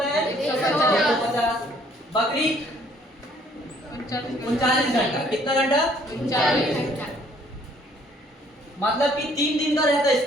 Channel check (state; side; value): normal; both; correlation 0.61